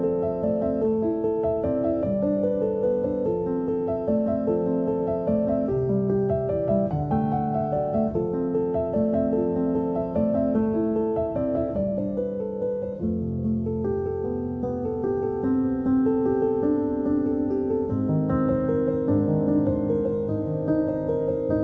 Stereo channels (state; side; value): identical; both; correlation 1.00